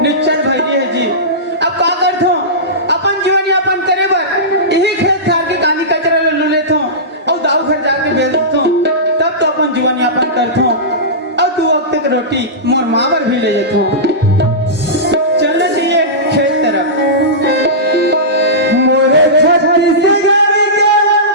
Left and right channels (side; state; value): both; normal; correlation -0.18